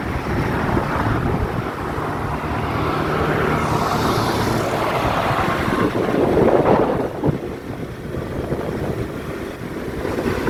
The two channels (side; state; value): both; identical; correlation 1.00